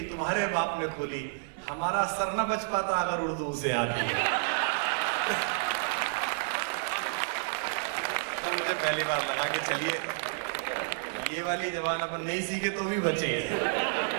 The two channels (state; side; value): silent; left; 58 dB below the other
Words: तुम्हारे बाप ने खोली, हमारा सर न बच पाता अगर उर्दू उसे आती है। तो मुझे पहली बार लगा कि चलिए ये वाली जबान अपन नहीं सीखे तो भी बचेंगे,